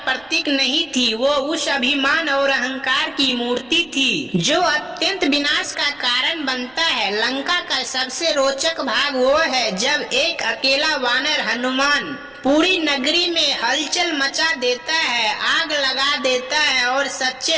प्रतीक नहीं थी, वो उस अभिमान और अहंकार की मूर्ति थी जो अत्यंत विनाश का कारण बनता है। लंका का सबसे रोचक भाग वो है जब एक अकेला वानर हनुमान पूरी नगरी में हलचल मचा देता है, आग लगा देता है और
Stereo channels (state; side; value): noise; right; rumble, 30 dB below the sound